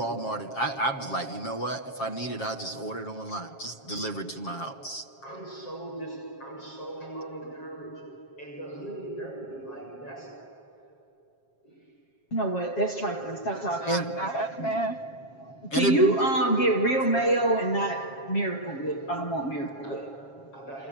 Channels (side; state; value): right; late; 7.4 ms